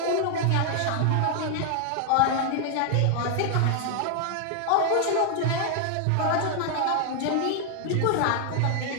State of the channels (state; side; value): different; both; correlation 0.00